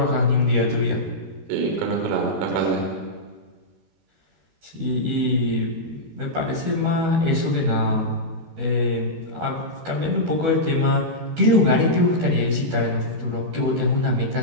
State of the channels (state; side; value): late; left; 12 ms